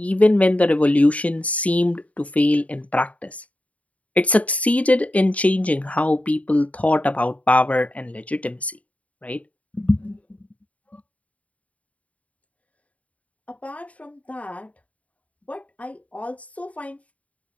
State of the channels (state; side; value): late; right; 0.068 ms